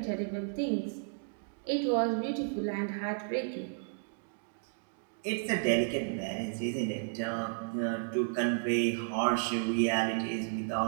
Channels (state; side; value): silent; left; digital silence